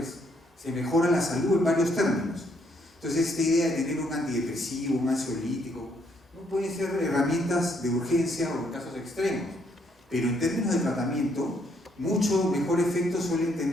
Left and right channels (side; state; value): both; normal; correlation 0.71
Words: Se mejora la salud en varios términos. Entonces, esta idea de tener un antidepresivo, un ansiolítico, no pueden ser herramientas de urgencia o en casos extremos, pero en términos de tratamiento, mucho mejor efecto suelen